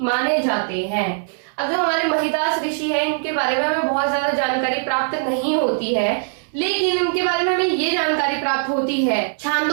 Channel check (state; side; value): silent; left; 65 dB below the other